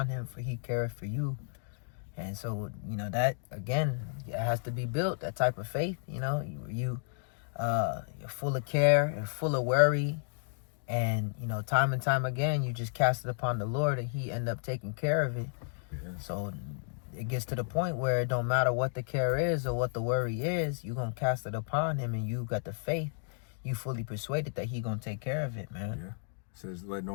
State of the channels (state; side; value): silent; right; digital silence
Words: him, for he careth for you. And so, that, again, it has to be built, that type of faith. You're full of care and full of worry. And, time and time again, you just cast it upon the Lord, and he end up taking care of it. Yeah. So it gets to the point where it don't matter what the care is or what the worry is, you're going to cast it upon him, and you got the faith. You fully persuaded that he going to take care of it, man. Yeah. It says, that